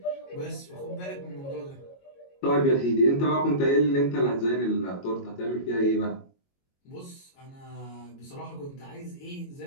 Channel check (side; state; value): right; late; 22 ms